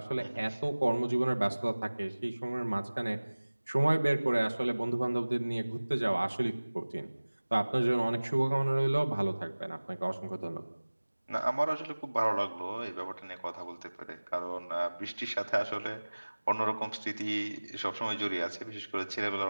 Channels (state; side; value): inverted; both; correlation -1.00